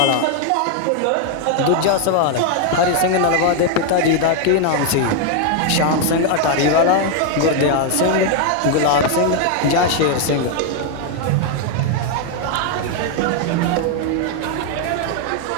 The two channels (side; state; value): both; different; correlation 0.00